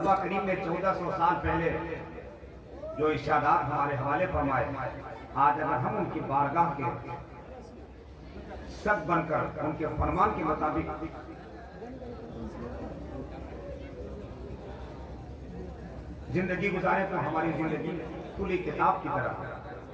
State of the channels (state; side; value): identical; both; correlation 1.00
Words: کریم نے 1400 سال پہلے جو ارشادات ہمارے حوالے فرمائے، آج اگر ہم ان کی بارگاہ کے سب بن کر ان کے فرمان کے مطابق زندگی گزارے تو ہماری زندگی کھلی کتاب کی طرح